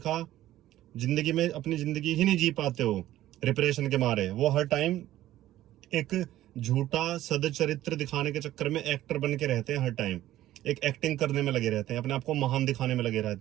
जिंदगी में अपनी जिंदगी ही नहीं जी पाते हो रिप्रेशन के मारे। वो हर टाइम एक झूठा सदचरित्र दिखाने के चक्कर में एक्टर बन के रहते हैं। हर टाइम एक एक्टिंग करने में लगे रहते हैं, अपने आप को महान दिखाने में लगे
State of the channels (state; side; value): quieter; left; 14.1 dB